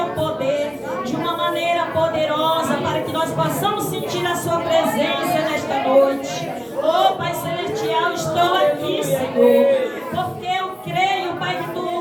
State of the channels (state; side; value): identical; both; correlation 1.00